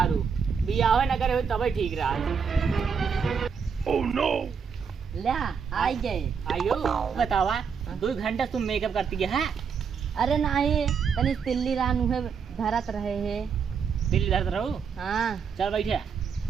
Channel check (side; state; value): left; quieter; 6.4 dB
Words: रू बियाह न करे हो तब ठीक रहा। Oh no! ले आई गए। आयो बतावा 2 घंटा तुम मेकअप करती है? अरे नहीं तनी तिल्ली रानू है धरत रहे है। दिल्ली धरत रहू? हाँ चल बैठे